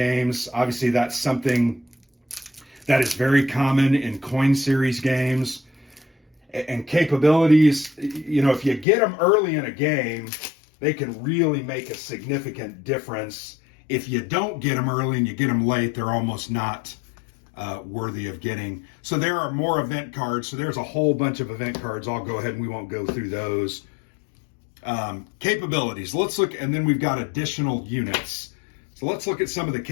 Obviously, that's something that is very common in coin series games. And capabilities, you know, if you get them early in a game, they can really make a significant difference. If you don't get them early and you get them late, they're almost not worthy of getting. So there are more event cards. So there's a whole bunch of event cards. I'll go ahead and we won't go through those. Capabilities. Let's look, and then we've got additional units. So let's look at some of the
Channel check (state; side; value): drops out; right; at 8.8 s